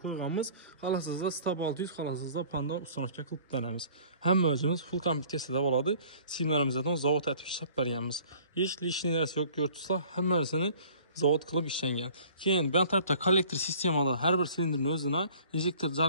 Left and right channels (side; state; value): both; inverted; correlation -0.51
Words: qo'yganmiz. Xolasizda Stab 600, xolasizda Panda ustamaga qilib beramiz. Hamma o'zimiz full kompleksiyada bo'ladi. Simlarimizdan zavod atib ishlab berganmiz. Hech lishniy narsa yo'q, ko'rtsizlar, hammasini zavod qilib ishlangan. Keyin bu tarafda kollektor sistemada har bir silindrning o'zini injektor